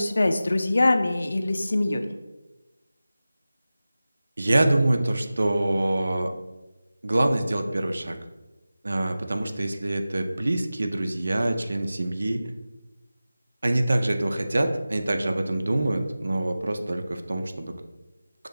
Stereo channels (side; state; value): both; inverted; correlation -0.96